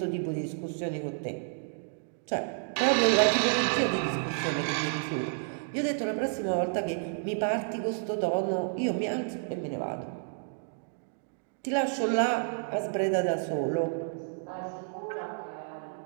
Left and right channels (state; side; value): silent; left; digital silence